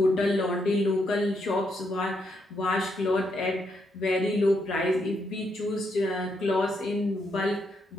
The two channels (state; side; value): normal; both; correlation 0.78